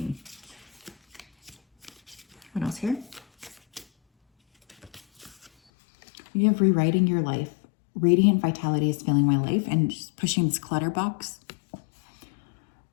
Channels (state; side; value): drops out; right; at 5.5 s